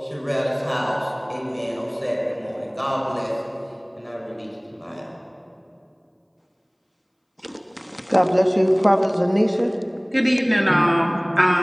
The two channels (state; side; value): identical; both; correlation 1.00